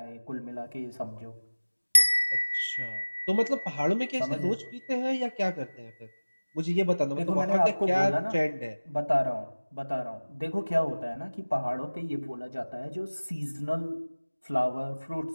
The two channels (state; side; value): inverted; both; correlation -1.00